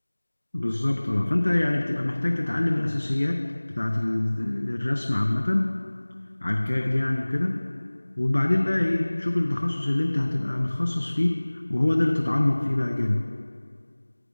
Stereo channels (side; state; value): both; inverted; correlation -1.00